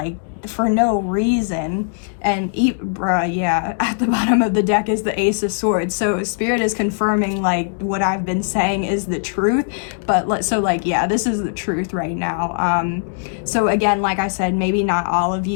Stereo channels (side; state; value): right; silent; digital silence